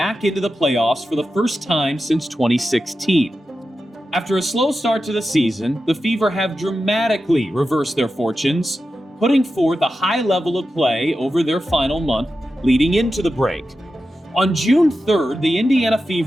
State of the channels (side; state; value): both; normal; correlation 0.91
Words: into the playoffs for the first time since 2016. After a slow start to the season, the Fever have dramatically reversed their fortunes, putting forth a high level of play over their final month leading into the break. On June 3rd, the Indiana